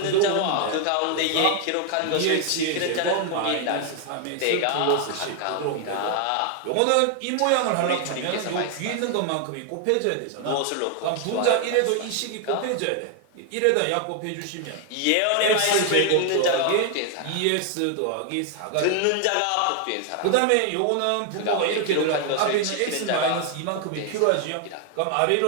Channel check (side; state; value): both; different; correlation 0.00